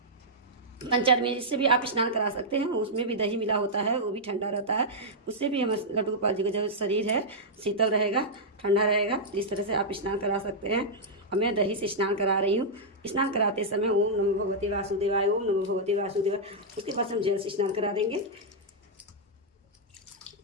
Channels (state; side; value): normal; both; correlation -0.08